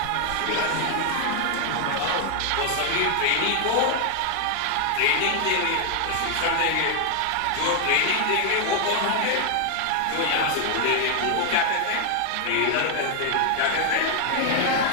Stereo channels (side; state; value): both; different; correlation 0.00